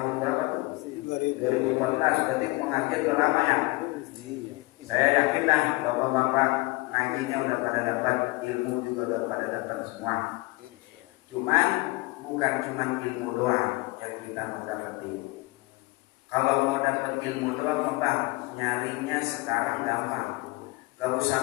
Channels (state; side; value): quieter; right; 23.6 dB